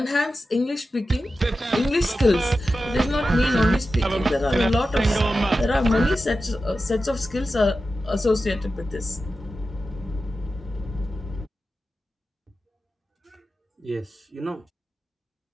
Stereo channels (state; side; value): normal; both; correlation 0.92